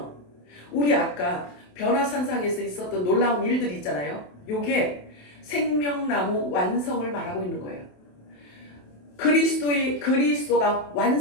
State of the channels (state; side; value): late; right; 28 ms